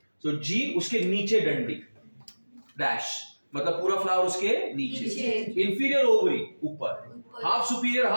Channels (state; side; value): inverted; both; correlation -1.00